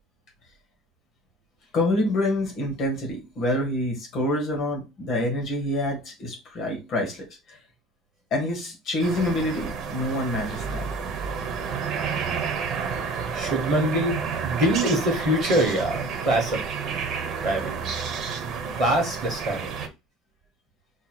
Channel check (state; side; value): normal; both; correlation 0.43